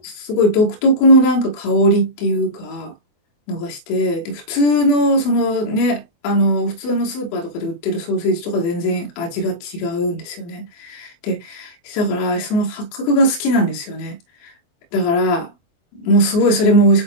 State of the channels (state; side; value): late; right; 24 ms